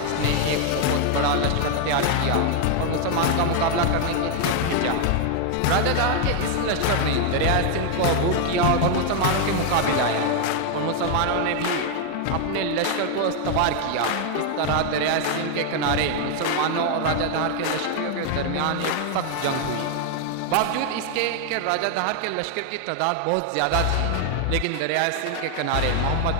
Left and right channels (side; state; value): both; different; correlation 0.00